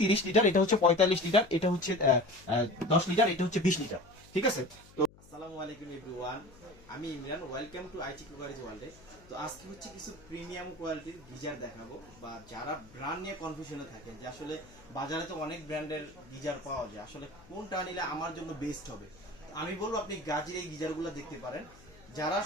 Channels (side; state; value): left; noise; hum, 24 dB below the sound